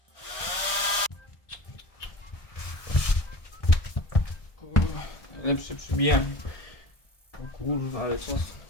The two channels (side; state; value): right; late; 1.3 ms